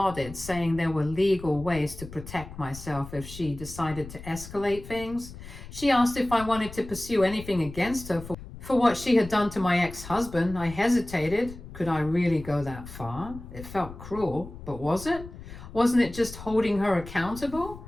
saying there were legal ways to protect myself if she decided to escalate things. She asked if I wanted to pursue anything against her for what she had done to my ex-husband. I hesitated. Could I really go that far? It felt cruel, but was it? Wasn't it just holding her accountable?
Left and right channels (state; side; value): noise; left; rumble, 14 dB below the sound